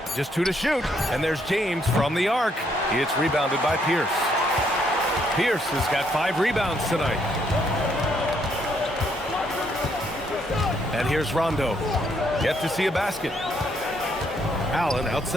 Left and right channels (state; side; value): normal; both; correlation 0.72